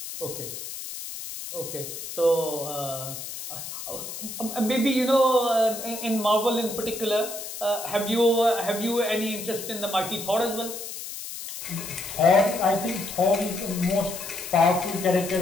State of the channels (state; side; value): noise; left; hiss, 9 dB below the sound